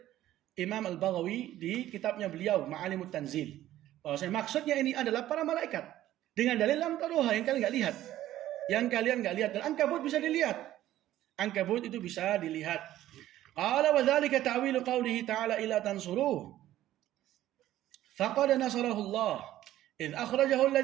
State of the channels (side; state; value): left; quieter; 13.7 dB